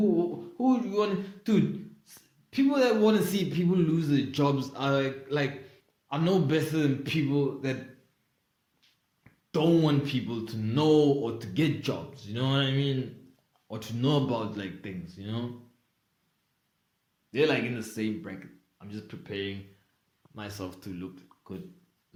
would you want to, dude, people that want to see people lose their jobs are are no better than people that don't want people to know or to get jobs, you know what I mean? Or to know about like things, you know? They're like in the same bracket. I'm just preparing myself to look good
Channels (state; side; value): identical; both; correlation 1.00